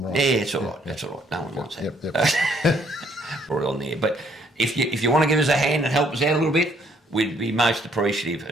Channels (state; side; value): normal; both; correlation 0.66